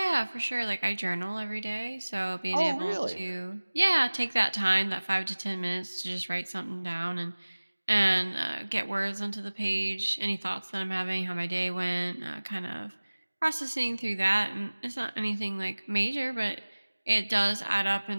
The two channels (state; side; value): inverted; both; correlation -1.00